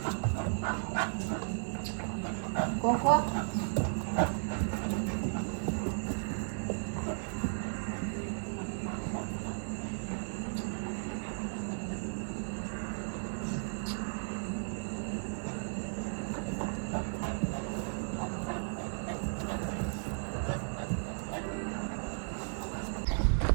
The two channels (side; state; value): left; silent; 55 dB below the other